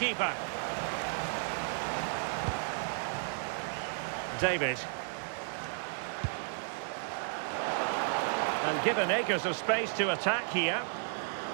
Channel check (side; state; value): left; silent; 56 dB below the other